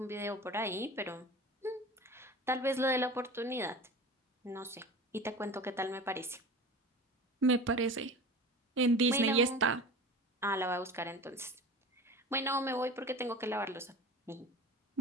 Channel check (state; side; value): normal; both; correlation 0.35